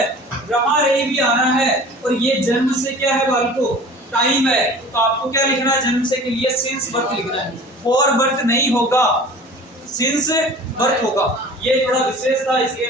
रहा रही भी आना है, और ये जन्म से क्या है बालको? टाइम है, तो आपको क्या लिखना है? जन्म से के लिए सिंस बर्थ लिखना है। फॉर बर्थ नहीं होगा, सिंस बर्थ होगा। ये थोड़ा विशेष था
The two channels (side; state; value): both; normal; correlation 0.43